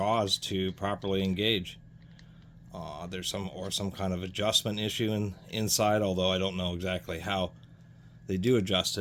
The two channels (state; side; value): identical; both; correlation 1.00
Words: to properly engage. There's some kind of adjustment issue inside, although I don't know exactly how they do adjust